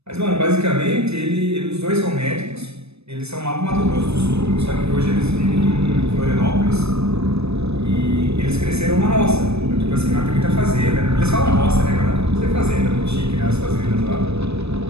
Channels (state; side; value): late; left; 0.79 ms